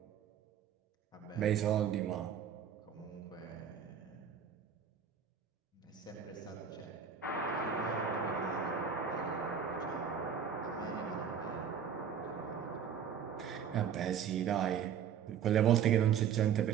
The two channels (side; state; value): left; quieter; 7.9 dB